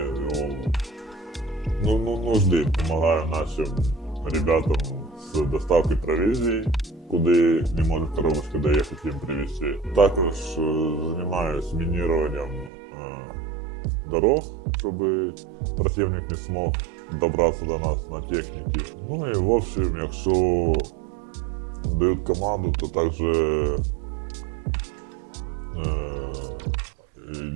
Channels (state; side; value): drops out; left; at 12.7 s